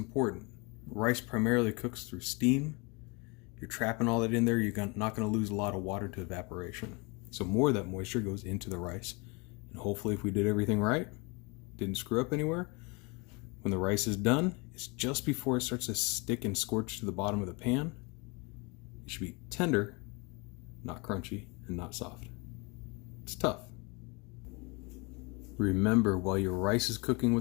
Rice primarily cooks through steam. You're trapping all that in there. You're not going to lose a lot of water to evaporation. So more of that moisture goes into the rice. And hopefully if we did everything right, didn't screw up anywhere, when the rice is done, it's just before it starts to stick and scorch to the bottom of the pan. It should be tender, not crunchy, and not soft. It's tough. Remember, while your rice is cooking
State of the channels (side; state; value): right; quieter; 29.3 dB